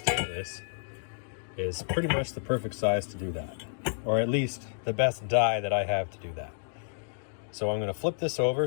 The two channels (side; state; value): right; silent; digital silence